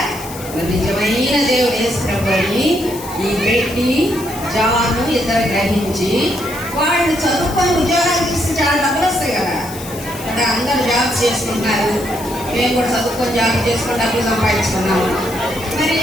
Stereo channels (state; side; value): noise; left; hiss, 14 dB below the sound